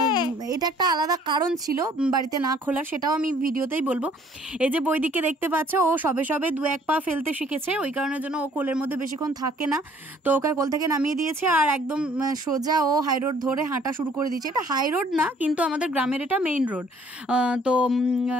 এটা একটা আলাদা কারণ ছিল বাড়িতে না খোলার, সেটাও আমি ভিডিওতেই বলবো। এই যে বৈদিককে দেখতে পাচ্ছ, ও সবে সবে 2-1 পা ফেলতে শিখেছে, ওই কারণের জন্য ও কোলের মধ্যে বেশিক্ষণ থাকে না। তো ওকে কোল থেকে নামিয়ে দিয়েছে আর একদম সোজা ও হাই রোড ধরে হাঁটা শুরু করে দিয়েছে। এটা হাই রোড না, কিন্তু আমাদের গ্রামের এটা মেইন রোড। তো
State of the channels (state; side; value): normal; both; correlation 0.59